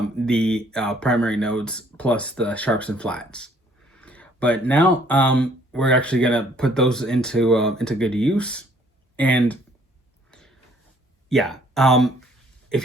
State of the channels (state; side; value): normal; both; correlation 0.61